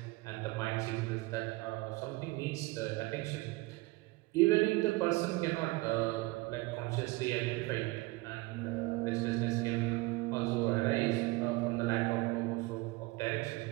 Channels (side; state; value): left; quieter; 21.9 dB